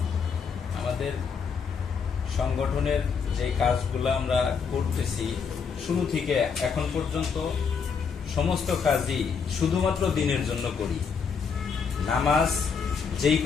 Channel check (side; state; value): right; quieter; 6.0 dB